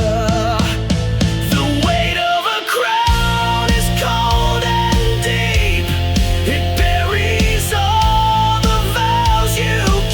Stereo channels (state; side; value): identical; both; correlation 1.00